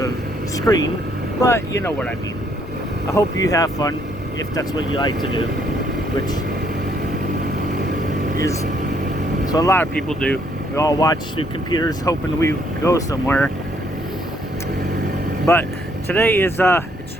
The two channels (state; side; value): normal; both; correlation 0.68